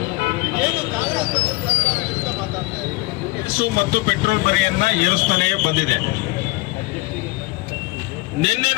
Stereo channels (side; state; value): right; quieter; 23.2 dB